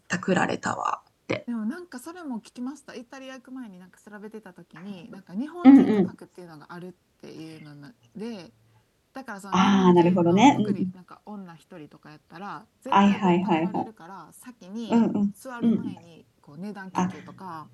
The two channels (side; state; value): both; identical; correlation 1.00